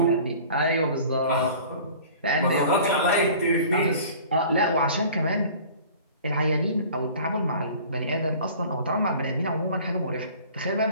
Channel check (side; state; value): both; inverted; correlation -0.45